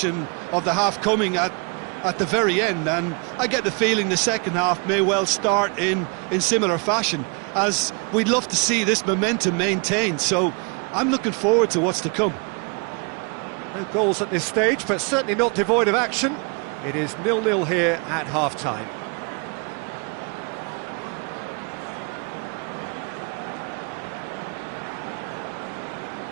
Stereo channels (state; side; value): quieter; left; 34.4 dB